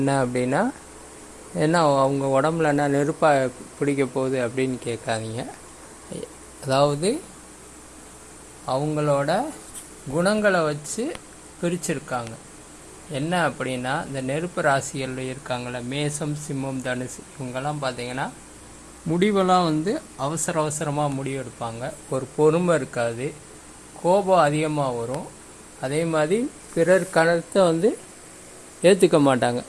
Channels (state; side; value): identical; both; correlation 1.00